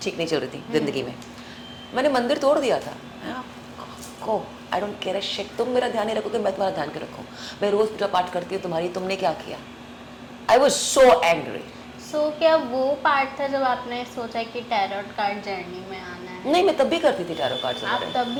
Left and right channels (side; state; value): both; identical; correlation 1.00